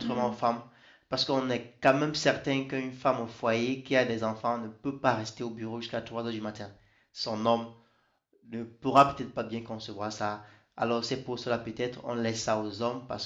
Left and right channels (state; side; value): identical; both; correlation 1.00